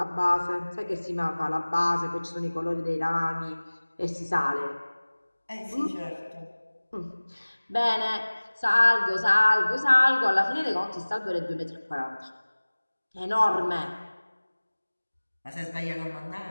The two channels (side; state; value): both; inverted; correlation -1.00